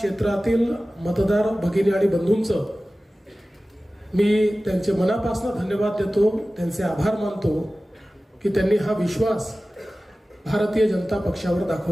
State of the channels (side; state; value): both; normal; correlation 0.96